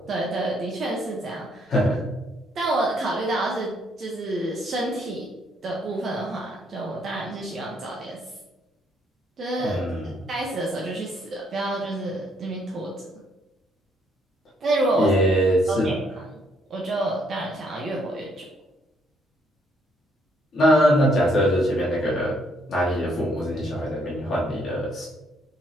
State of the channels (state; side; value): normal; both; correlation 0.70